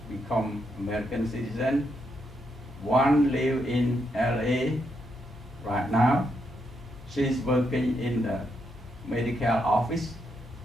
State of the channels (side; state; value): both; normal; correlation 0.80